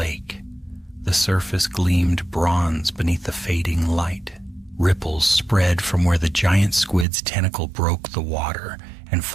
The surface gleamed bronze beneath the fading light. Ripples spread from where the giant squid's tentacle broke the water, and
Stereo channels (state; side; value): drops out; left; at 7.1 s